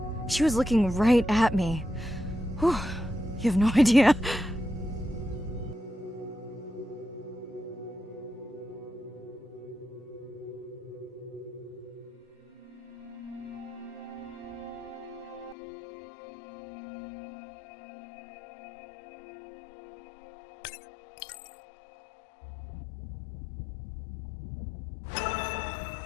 She was looking right at me. Whew, you have no idea.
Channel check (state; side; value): drops out; right; at 15.6 s